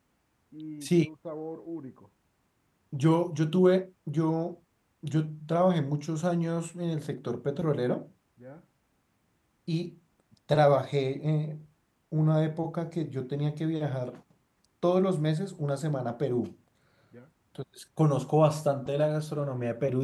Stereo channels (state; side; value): identical; both; correlation 1.00